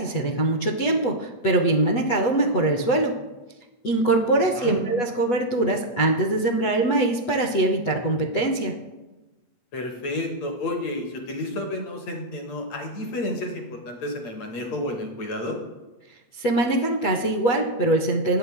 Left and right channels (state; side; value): late; right; 8.2 ms